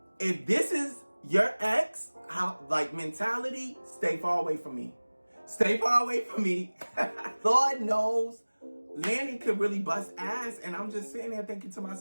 if this is your ex, mentality, stay far away from me. Stay far away from me. Lord knows Landon could really bust ass, and I'm just sitting there thinking to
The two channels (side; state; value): both; inverted; correlation -1.00